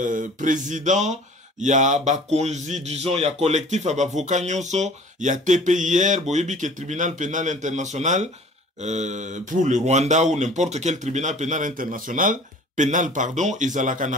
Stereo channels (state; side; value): normal; both; correlation 0.48